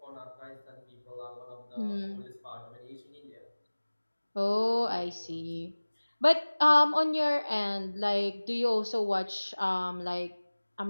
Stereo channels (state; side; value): inverted; both; correlation -1.00